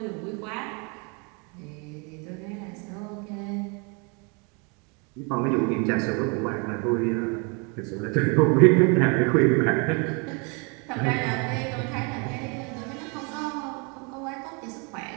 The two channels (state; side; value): quieter; left; 33.0 dB